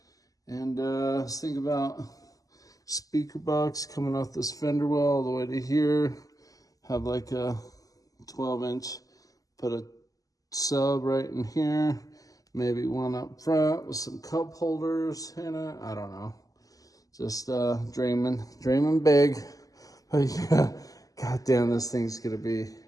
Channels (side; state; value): right; late; 0.17 ms